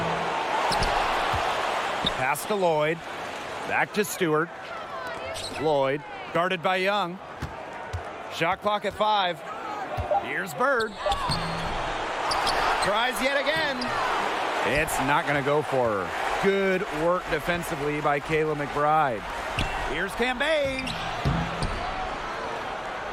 Pass to Lloyd. Back to Stewart. Lloyd, guarded by Young. Shot clock at 5. Here's Bird. Tries yet again. It's not going to go for her. Good work defensively by Kayla McBride. Here's Cambage.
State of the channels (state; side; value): identical; both; correlation 1.00